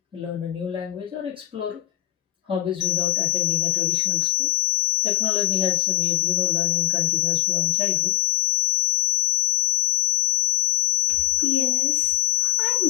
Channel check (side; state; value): right; quieter; 15.7 dB